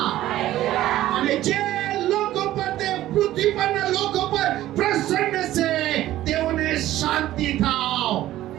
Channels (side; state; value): left; quieter; 14.4 dB